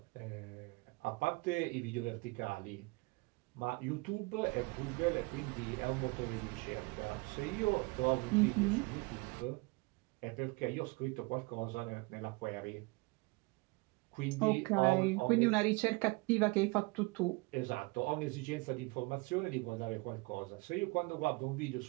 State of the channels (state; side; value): quieter; left; 26.6 dB